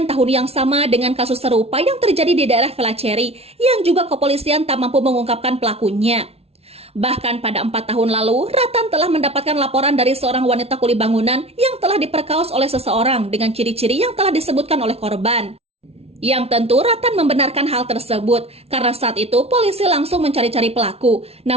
tahun yang sama dengan kasus serupa yang terjadi di daerah Velaceri yang juga kepolisian tak mampu mengungkapkan pelakunya. Bahkan pada 4 tahun lalu, Ratan telah mendapatkan laporan dari seorang wanita kuli bangunan yang telah diperkaos oleh seseorang dengan ciri-ciri yang telah disebutkan oleh korban. Yang tentu Ratan membenarkan hal tersebut karena saat itu polisi langsung mencari-cari pelaku,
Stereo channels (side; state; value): left; late; 0.30 ms